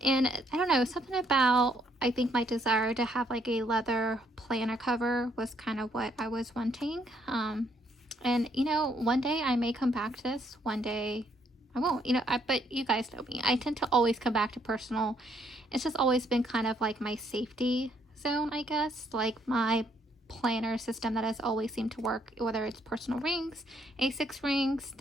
And I don't know, something about, I think my desire to have like a leather planner cover was kind of what I was wanting. And one day I may come back to this, one day I won't, but you guys know me. I tend to always come back to personal. It's just always been kind of like my safety zone, I guess, like my planner system that has always seemed to work, whether it's personal rings, A6 rings.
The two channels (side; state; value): both; normal; correlation 0.70